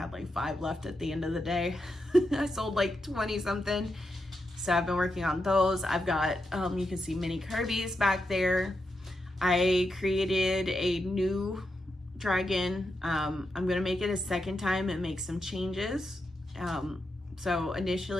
like 5 left at the end of the day. I sold like 20 something. So I've been working on those. I've got, you can see mini Kirby's back there. I created a new dragon. I'm gonna make it a second time and make some changes. So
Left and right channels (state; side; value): normal; both; correlation 0.86